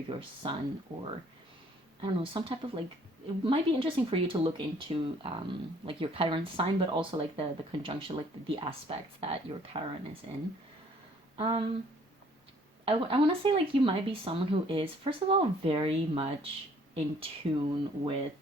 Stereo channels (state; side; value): normal; both; correlation 0.59